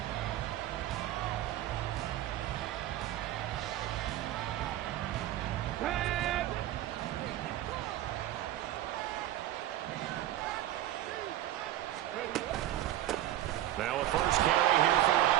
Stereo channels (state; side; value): quieter; left; 13.5 dB